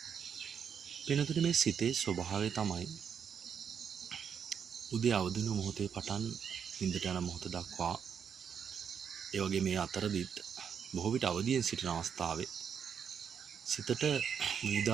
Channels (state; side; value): quieter; left; 7.4 dB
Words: පින්නතුනි මේ සිතේ ස්වභාවය තමයි උදේ අවදින මොහොතේ පටන් නිින්දට යන මොහොත දක්වා, ඒ වගේ මේ අතරදිත් බොහෝ විට අවදියෙන් සිටින අවස්ථාවේ සිතට